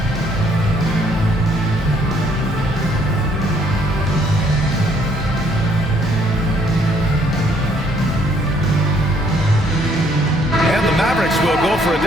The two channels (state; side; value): normal; both; correlation 0.66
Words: Will go for a